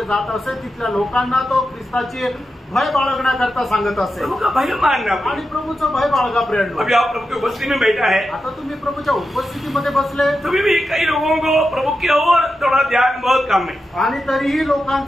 जात असे तिथल्या लोकांना तो ख्रिस्ताची भय बाळगण्याकरता सांगत असे. प्रभु का भय मानना. आणि प्रभूचं भय बाळगा प्रेरणा. अभी आप प्रभु की उपस्थिति में बैठा है. आता तुम्ही प्रभूच्या उपस्थितीमध्ये बसले तभी भी कई लोगों को प्रभु की ओर थोड़ा ध्यान बहुत कम है. आणि तरीही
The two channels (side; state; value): both; normal; correlation 0.89